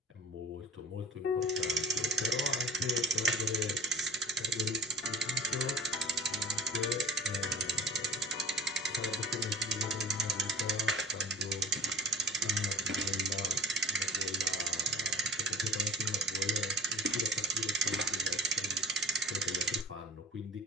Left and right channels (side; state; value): both; normal; correlation 0.41